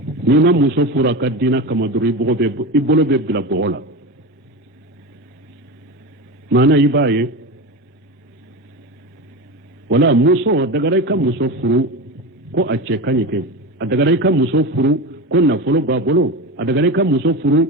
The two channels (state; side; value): normal; both; correlation 0.23